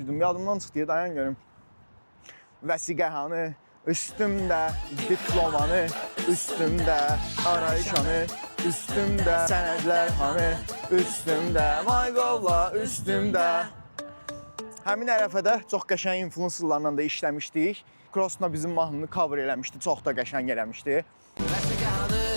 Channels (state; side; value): inverted; both; correlation -1.00